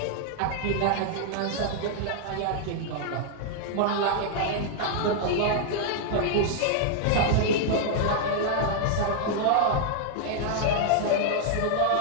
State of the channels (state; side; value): different; both; correlation -0.01